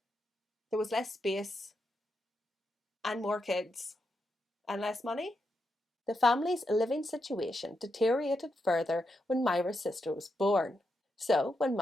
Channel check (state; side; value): normal; both; correlation 0.84